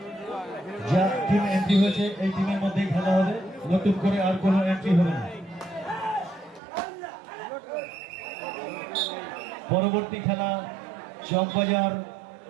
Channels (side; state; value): left; drops out; at 6.6 s